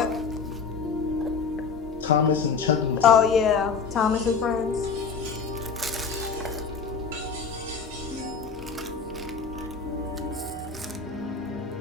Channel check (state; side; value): quieter; right; 5.3 dB